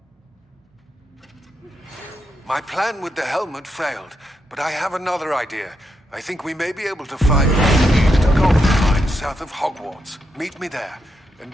My plan with the helmet failed, but I have another idea. I think we may be able to find what leads to gold mines south of Hogwarts. Meet me there, and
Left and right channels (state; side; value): normal; both; correlation 0.82